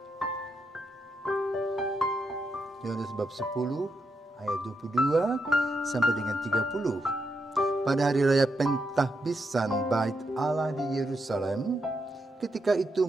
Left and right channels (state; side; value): normal; both; correlation 0.82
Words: Yohanes bab 10 ayat 22 sampai dengan 30. Pada hari raya Pentahbisan Bait Allah di Yerusalem, ketika itu